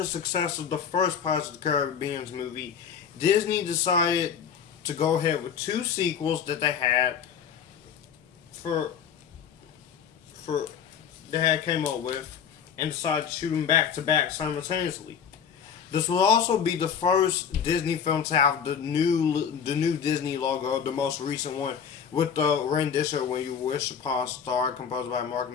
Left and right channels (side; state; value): right; quieter; 7.5 dB